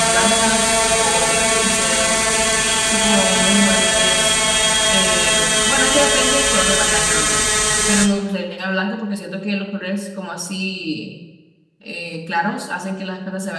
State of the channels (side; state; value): both; identical; correlation 1.00